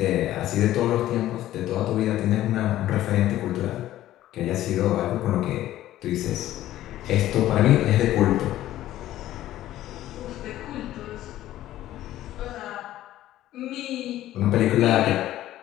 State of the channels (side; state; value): right; quieter; 13.9 dB